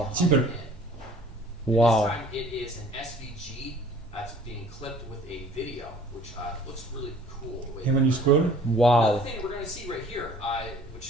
Simple. Wow. This time it is an SVG that's being clipped with a video, which looks really cool. And when you scroll, Wow. Another thing that we're going to see right here,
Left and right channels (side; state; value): both; normal; correlation 0.51